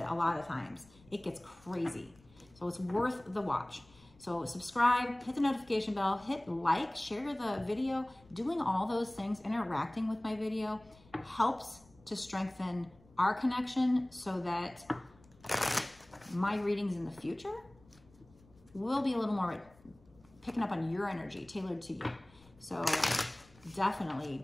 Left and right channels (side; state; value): left; noise; rumble, 27 dB below the sound